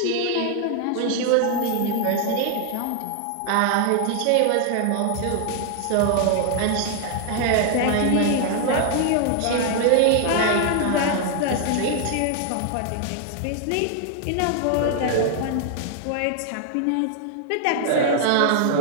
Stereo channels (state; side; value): different; both; correlation 0.00